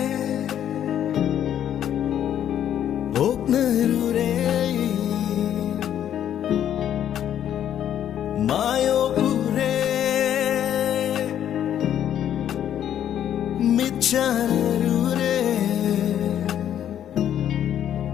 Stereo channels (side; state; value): right; quieter; 10.3 dB